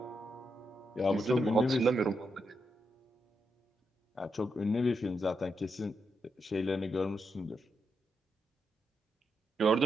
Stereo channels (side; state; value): both; normal; correlation 0.83